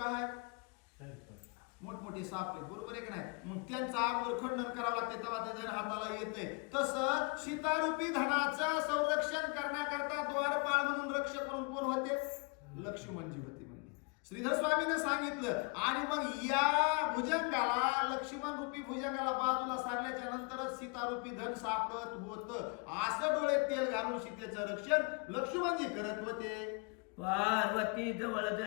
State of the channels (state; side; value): quieter; right; 32.4 dB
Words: मोठमोठी साप आहे, बरोबर आहे का नाही? मग त्यांचा आगोर खंडन करावं लागते तेव्हा ते धन हाताला येते. तसं सीतारूपी धनाचं संरक्षण करण्याकरता द्वारपाळ म्हणून रक्षक करून कोण होते? लक्ष्मणजी होते. म्हणजे श्रीधर स्वामीने सांगितलं. आणि मग या भुजंगाला, लक्ष्मण रूपी भुजंगाला बाजूला सारल्याच्या नंतरच सीतारूपी धन सापडत होतं. असं डोळे तेल घालून सीतेचं रक्षण लक्ष्मणजी करत होते. पार्वती जवळ